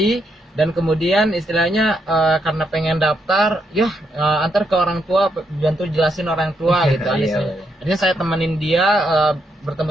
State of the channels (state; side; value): normal; both; correlation 0.79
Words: dan kemudian istilahnya karena pengen daftar, antar ke orang tua, bantu jelasin orang tua gitu. Akhirnya saya temenin dia,